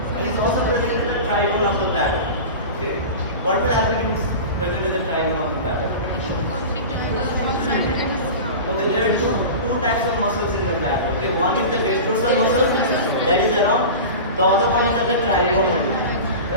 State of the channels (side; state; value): both; inverted; correlation -0.31